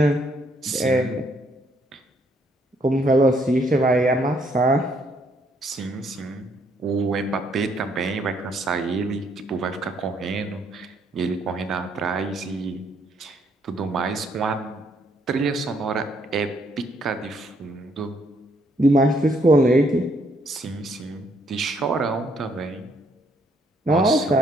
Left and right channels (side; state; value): both; normal; correlation 0.70